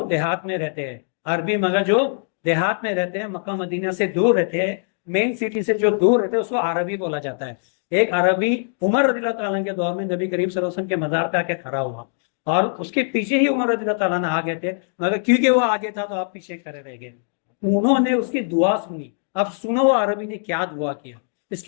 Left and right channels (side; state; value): right; silent; digital silence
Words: دیہات میں رہتے ہیں، عربی مگر جو دیہات میں رہتے ہیں، مکہ مدینہ سے دور رہتے ہیں، مین سٹی سے جو دور رہتے ہیں، اس کو عربی بولا جاتا ہے۔ ایک عربی عمر رضی اللہ تعالیٰ کے دور میں نبی کریم صلی اللہ علیہ وسلم کے مزار پہ آ کے کھڑا ہوا، اور اس کے پیچھے ہی عمر رضی اللہ تعالیٰ نے آگے تھے، مگر کیونکہ وہ آگے تھا تو آپ پیچھے کھڑے رہ گئے۔ انہوں نے اس کی دعا سنی۔ اب سنو وہ عربی نے کیا دعا کیا۔ اس